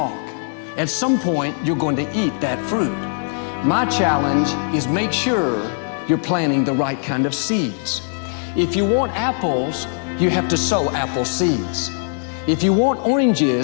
At some point, you're going to eat that fruit. My challenge is make sure you're planting the right kind of seeds. If you want apples, you have to sow apple seeds. If you want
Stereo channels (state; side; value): silent; right; digital silence